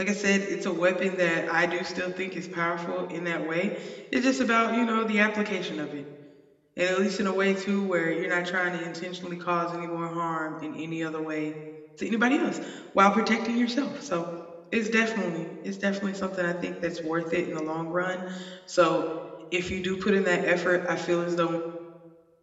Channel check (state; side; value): identical; both; correlation 1.00